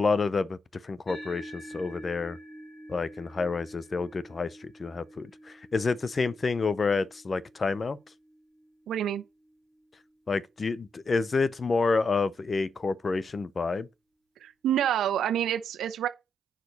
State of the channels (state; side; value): normal; both; correlation 0.81